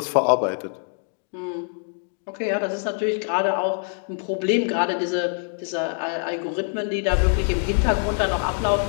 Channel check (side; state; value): right; silent; 57 dB below the other